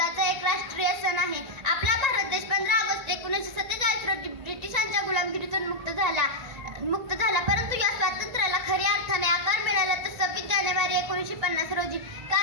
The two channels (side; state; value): left; late; 1.9 ms